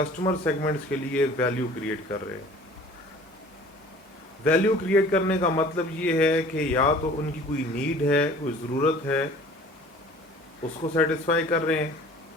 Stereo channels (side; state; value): both; normal; correlation 0.47